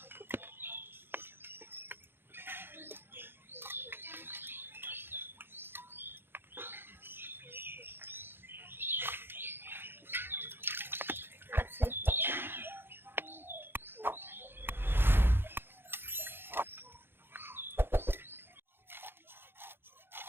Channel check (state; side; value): late; left; 0.10 ms